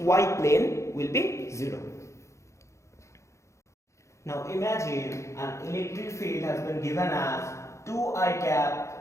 plane will be 0. Now, imagine an electric field has been given as 2i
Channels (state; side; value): late; right; 0.14 ms